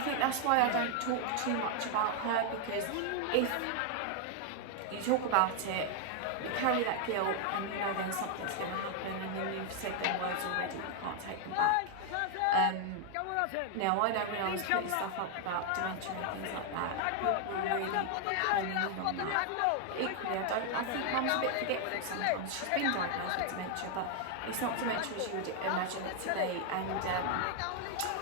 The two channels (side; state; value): both; different; correlation 0.00